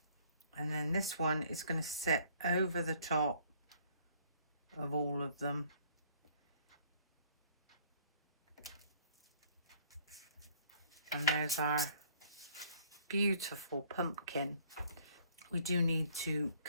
And then this one is going to sit over the top of all of them. And there's our beautiful pumpkin. We do need to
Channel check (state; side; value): inverted; both; correlation -0.60